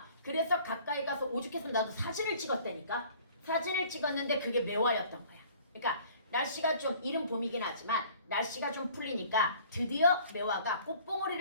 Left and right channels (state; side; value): inverted; both; correlation -0.52